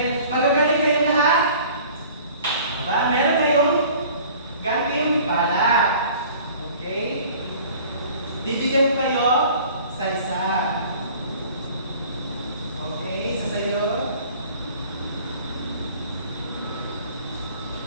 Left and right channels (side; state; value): both; inverted; correlation -0.48